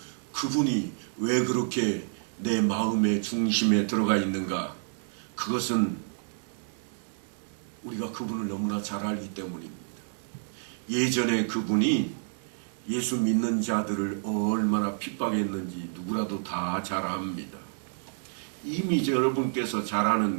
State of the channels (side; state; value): left; silent; digital silence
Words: 그분이 왜 그렇게 내 마음의 중심에 들어가 있는가? 그것은 우리가 그분을 너무나 잘 알기 때문입니다. 예전에 그분이 예수 믿는 자들을 얼마나 핍박했는지 누구라도 다 잘 압니다. 이미 여러분께서 잘